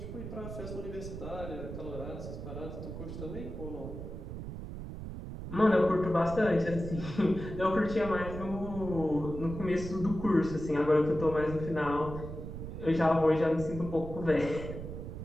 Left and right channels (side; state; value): right; noise; rumble, 8 dB below the sound